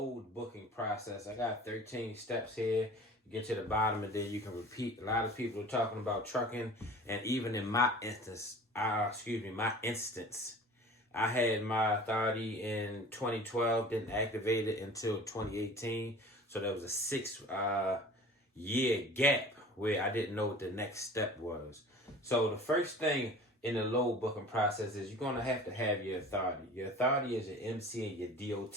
booking process. I got 13 steps here. You get to the bottom and then you can repeat. A lot of people are talking about trucking, and even in my instance, I had my authority in 2012, didn't activate it until 2018. So there was a 6 year gap where I didn't know what the next step was. So the first thing in the load booking process is you're going to have your authority. Your authority is your MC and your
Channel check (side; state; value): both; normal; correlation 0.42